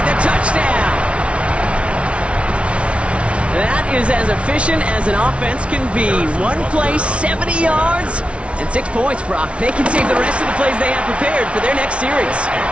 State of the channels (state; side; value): late; left; 0.061 ms